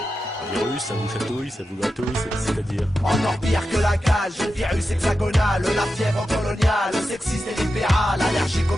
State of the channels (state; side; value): normal; both; correlation 0.90